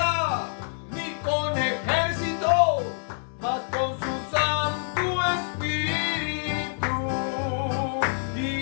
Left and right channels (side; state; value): right; silent; 61 dB below the other